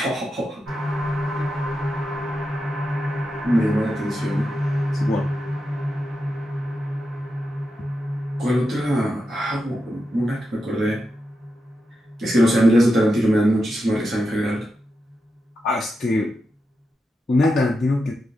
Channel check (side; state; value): both; normal; correlation 0.88